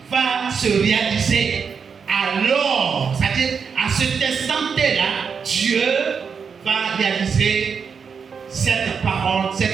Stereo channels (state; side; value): quieter; left; 6.1 dB